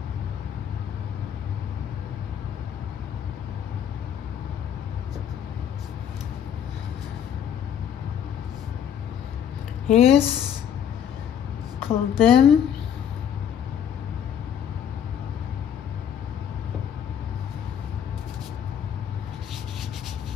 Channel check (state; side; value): quieter; right; 8.9 dB